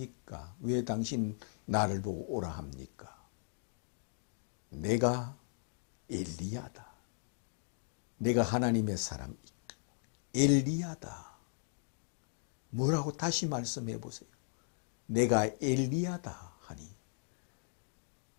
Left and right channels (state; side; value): silent; right; digital silence